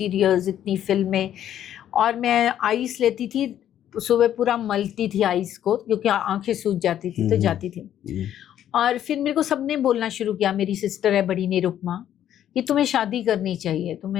इतनी फिल्में, और मैं आइस लेती थी सुबह पूरा मलती थी आइस को, क्योंकि आंखें सूज जाती थी तो जाती थी। और फिर मेरे को सबने बोलना शुरू किया, मेरी सिस्टर है बड़ी निरुपमा, कि तुम्हें शादी करनी चाहिए,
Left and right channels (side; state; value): right; quieter; 10.9 dB